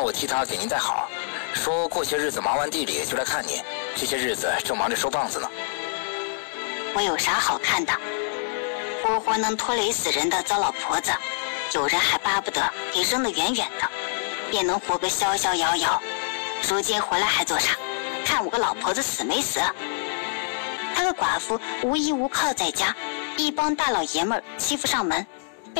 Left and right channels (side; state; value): right; silent; digital silence